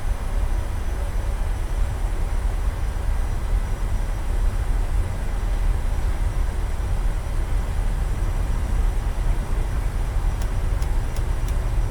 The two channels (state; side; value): identical; both; correlation 1.00